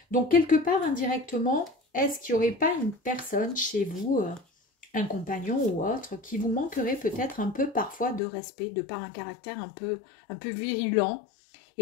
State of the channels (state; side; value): drops out; right; at 8.2 s